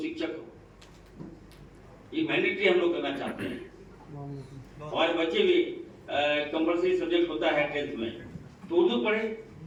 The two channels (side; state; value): both; identical; correlation 1.00